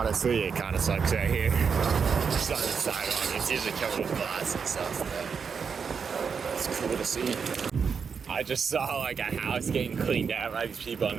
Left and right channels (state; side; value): quieter; left; 6.1 dB